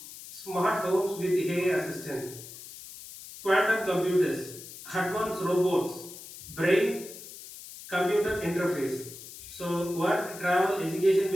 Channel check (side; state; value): left; noise; hiss, 14 dB below the sound